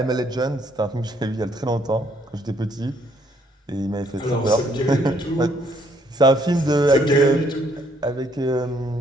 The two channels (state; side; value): normal; both; correlation 0.68